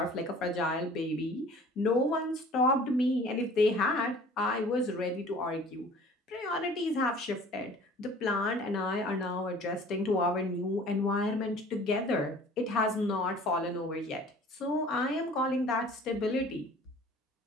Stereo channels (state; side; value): normal; both; correlation 0.48